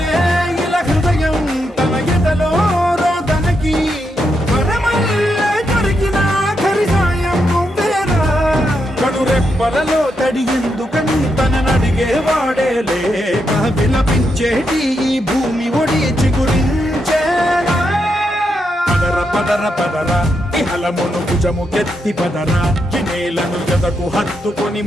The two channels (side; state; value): both; normal; correlation 0.82